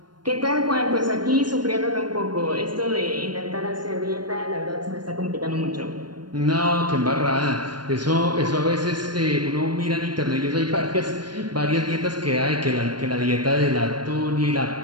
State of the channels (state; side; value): late; left; 0.71 ms